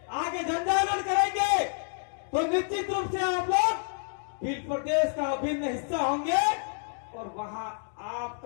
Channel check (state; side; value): silent; right; 59 dB below the other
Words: आगे जनजागरण करेंगे तो निश्चित रूप से आप लोग भील प्रदेश का अभिन्न हिस्सा होंगे और वहां